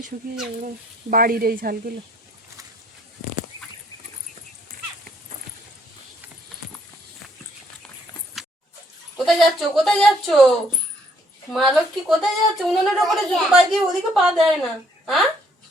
শুকিয়ে যাবে বাড়ির এই ঝালগুলো। কোথায় যাচ্ছ, কোথায় যাচ্ছ মা লক্ষ্মী, কোথায় যাচ্ছ? উনুনের ওপরে জুতো পা দিয়ে ওদিকে পা দেয় না। হ্যাঁ,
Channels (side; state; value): both; normal; correlation 0.66